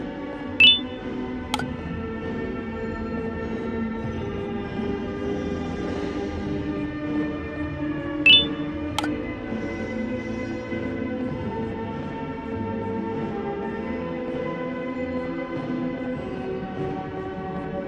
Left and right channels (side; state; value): both; identical; correlation 1.00